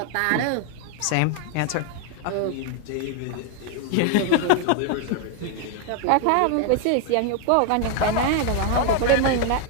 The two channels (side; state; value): both; different; correlation 0.00